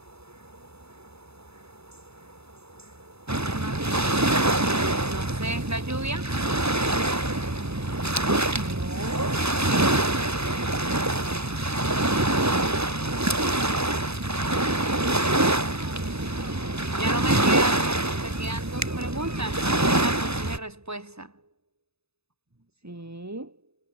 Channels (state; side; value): late; left; 0.79 ms